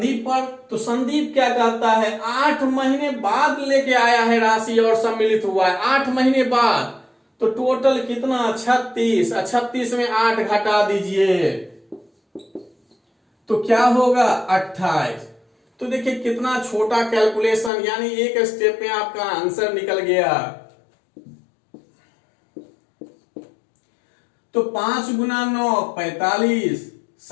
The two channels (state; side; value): drops out; right; at 17.7 s